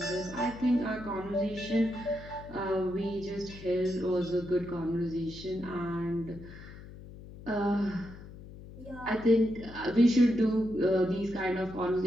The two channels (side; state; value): left; noise; hum, 15 dB below the sound